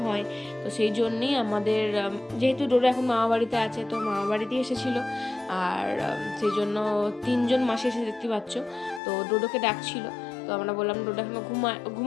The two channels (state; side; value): drops out; right; at 9.0 s